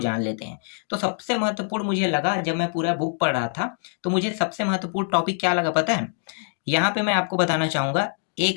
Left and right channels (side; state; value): right; silent; 62 dB below the other